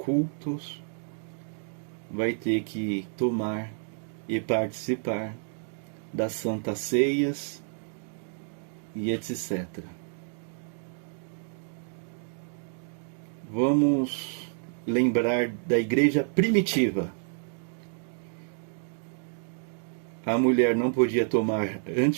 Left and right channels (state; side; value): silent; left; 56 dB below the other